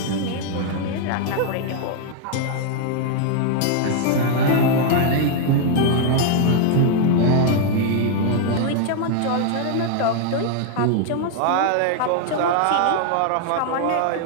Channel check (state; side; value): different; both; correlation 0.00